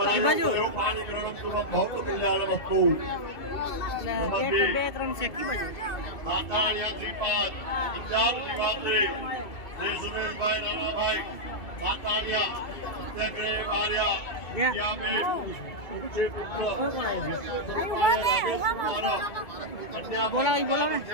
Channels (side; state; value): right; late; 2.2 ms